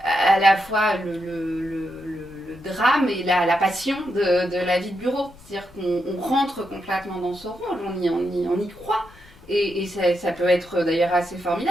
la fois le drame et la passion de la vie de bureau. C'est-à-dire qu'on rentre complètement dans ce rôle, on y croit. Et ça peut être d'ailleurs assez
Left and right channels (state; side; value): noise; left; rumble, 26 dB below the sound